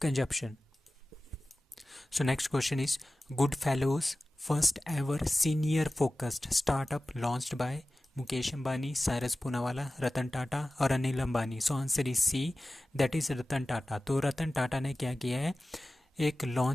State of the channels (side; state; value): both; normal; correlation 0.96